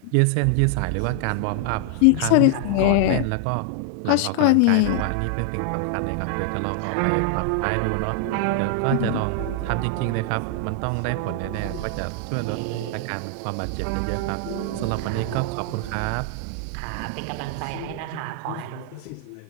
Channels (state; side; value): different; both; correlation 0.00